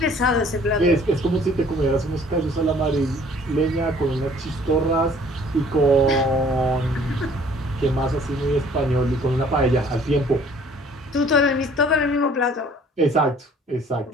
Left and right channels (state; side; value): normal; both; correlation 0.55